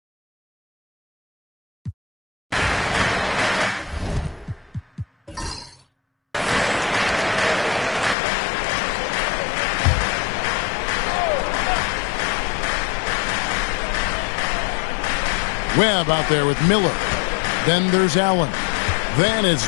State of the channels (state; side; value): drops out; right; at 8.2 s